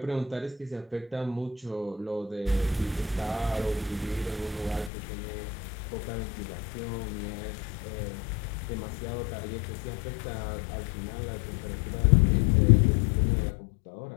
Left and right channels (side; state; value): right; drops out; at 4.9 s